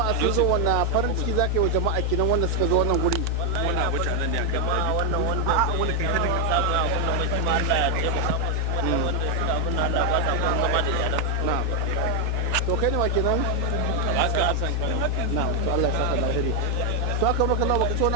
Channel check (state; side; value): late; left; 4.8 ms